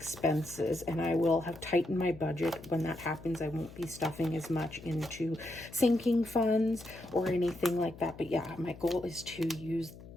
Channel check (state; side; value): noise; left; hum, 17 dB below the sound